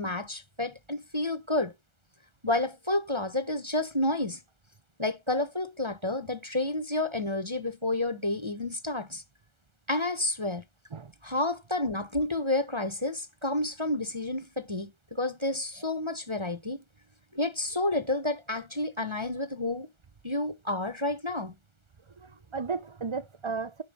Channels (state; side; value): late; left; 1.3 ms